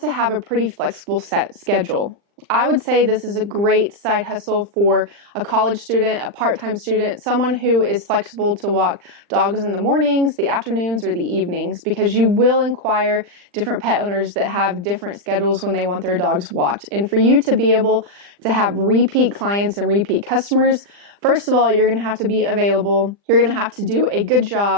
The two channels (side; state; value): left; late; 40 ms